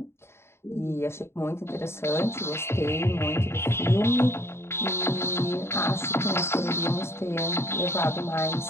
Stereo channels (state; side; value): late; right; 0.12 ms